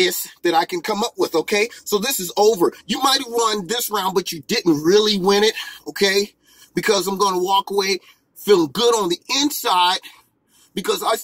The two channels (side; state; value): both; identical; correlation 1.00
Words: that I can come up with, okay? So this is over. You might have won this round, but you didn't really win it, okay? Because I'm going to walk away feeling good on the inside because I